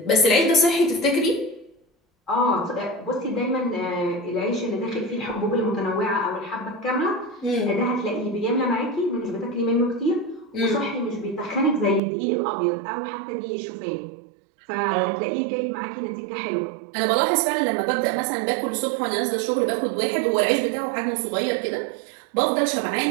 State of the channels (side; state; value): left; drops out; at 12.0 s